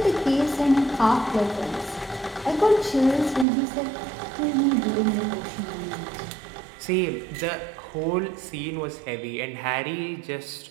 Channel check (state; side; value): drops out; left; at 3.5 s